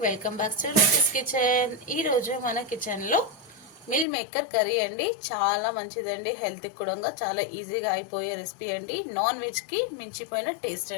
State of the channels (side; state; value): right; drops out; at 4.0 s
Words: welcome back to Ruchis kitchen. ఈరోజు మన కిచెన్లో మిల్ మేకర్ కర్రీ అండి. చాలా మంచిదండి, హెల్త్కి కూడా చాలా ఈజీగా అయిపోయే రెసిపీ అండి. నాన్ వెజ్కి మించిపోయిన టేస్ట్